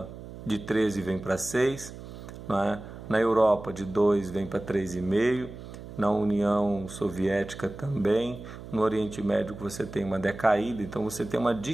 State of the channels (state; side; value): noise; right; hum, 13 dB below the sound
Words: de 13 vem para 6, né? Na Europa, de 2 vem para 3,5, na União Soviética também, no Oriente Médio você tem uma decaída, então você tem uma